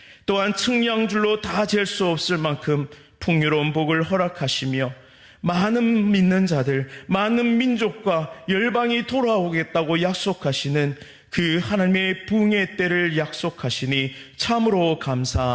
또한 측량줄로 다 잴 수 없을 만큼 풍요로운 복을 허락하시며 많은 믿는 자들, 많은 민족과 열방이 돌아오겠다고 약속하시는 그 하나님의 부흥의 때를 약속하시니 참으로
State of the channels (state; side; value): identical; both; correlation 1.00